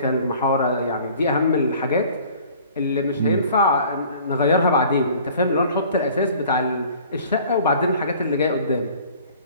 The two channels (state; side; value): inverted; both; correlation -0.50